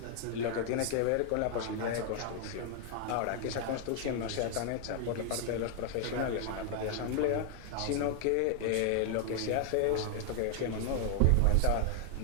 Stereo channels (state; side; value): different; both; correlation 0.00